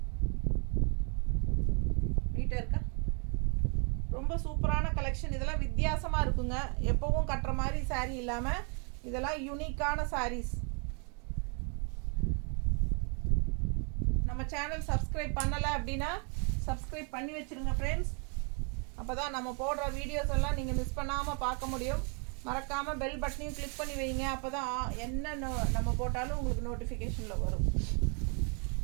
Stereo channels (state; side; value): quieter; left; 37.7 dB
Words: நீட்டாக இருக்கா? ரொம்ப சூப்பரான கலெக்ஷன். இதெல்லாம் வித்தியாசமாக இருக்குங்க. எப்போவும் கட்டுற மாதிரி saree இல்லாமல் இதெல்லாம் யூனிக்கான sarees. நம்ம சேனல் சப்ஸ்கிரைப் பண்ணலை அப்படின்னா சப்ஸ்கிரைப் பண்ணி வச்சுருங்க ஃப்ரெண்ட்ஸ். அப்போ தான் நம்ம போடுற வீடியோஸ் எல்லாம் நீங்கள் மிஸ் பண்ணாமல் பார்க்க முடியும். மறக்காமல் பெல் பட்டனையும் கிளிக் பண்ணி வைங்க. அப்போ தான் என்ன நம்ம போட்டாலும் உங்களுக்கு நோட்டிஃபிகேஷனில் வரும்.